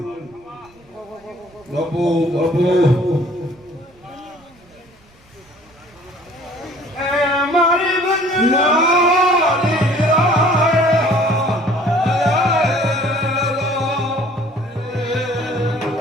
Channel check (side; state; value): right; noise; rumble, 29 dB below the sound